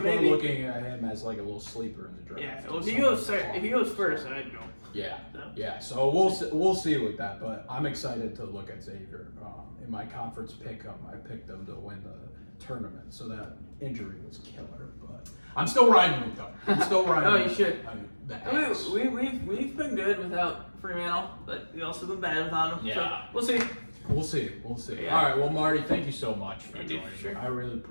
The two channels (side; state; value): both; inverted; correlation -1.00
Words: at him as like a little sleeper in the draft. Yeah. Well, if he goes first, I'd go. Yeah. No. Yeah. So we'll see with that, but I'm excited to look at Xavier. In my conference pick 'em, I picked them to win the tournament, so that injury was killer. But I'm still riding with them. Oh, you should. We've been good without Fremantle, but we also been bad without him. Yeah. So we'll see. We'll see. Yeah. All right. Well, Marty, thank you so much for joining me. Sure. I really